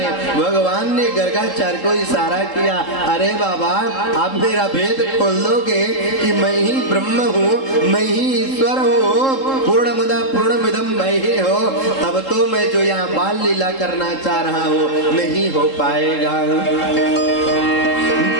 हैं। भगवान ने गर्गाचार्य को इशारा किया, अरे बाबा आप मेरा भेद खोल दोगे कि मैं ही ब्रह्म हूँ, मैं ही ईश्वर हूँ, पूर्णमदा पूर्णमिदं मयि हो, तब तो मैं जो यहाँ बाल लीला करना चाह रहा हूँ नहीं हो पाएगा।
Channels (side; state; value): right; late; 3.7 ms